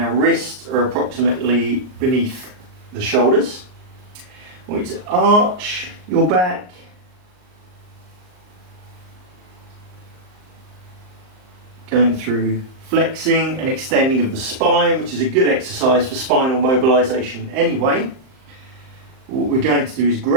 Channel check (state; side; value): late; left; 38 ms